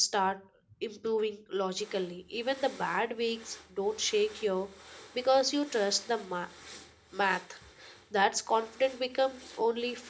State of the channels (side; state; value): both; identical; correlation 1.00